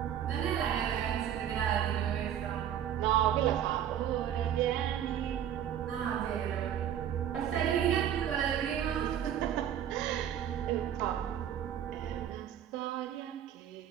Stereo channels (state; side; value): quieter; left; 9.9 dB